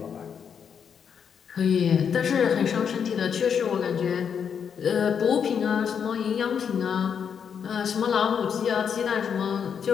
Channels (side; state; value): right; quieter; 7.3 dB